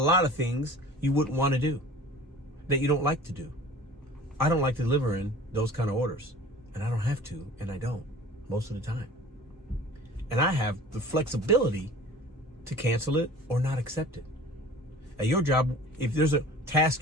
of things you wouldn't want to do, that you don't like to do. I don't like delivering those kind of orders, and I don't have to, and I don't most of the time. And I have the flexibility to cancel it or not accept it. At your job, if there's a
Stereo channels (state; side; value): normal; both; correlation 0.43